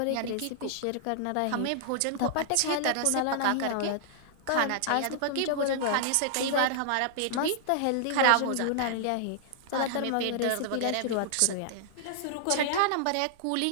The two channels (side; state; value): both; different; correlation -0.01